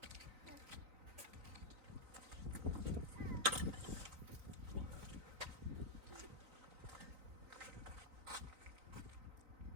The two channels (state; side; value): late; left; 3.9 ms